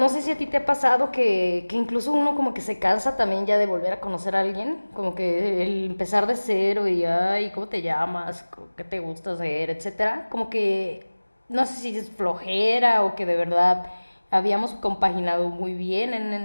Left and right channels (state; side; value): inverted; both; correlation -1.00